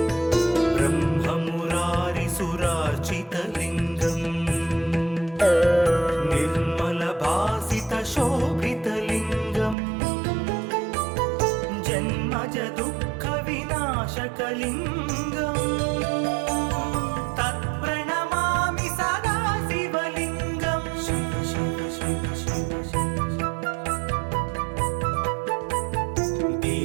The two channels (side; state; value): left; drops out; at 9.8 s